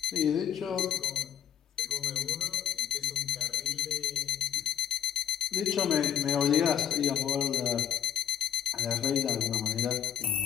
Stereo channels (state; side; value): quieter; right; 9.3 dB